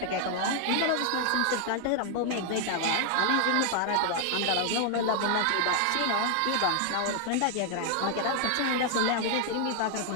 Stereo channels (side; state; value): both; different; correlation 0.00